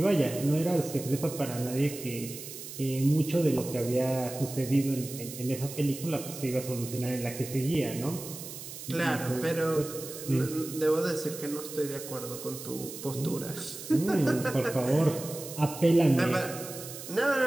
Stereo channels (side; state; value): right; noise; hiss, 11 dB below the sound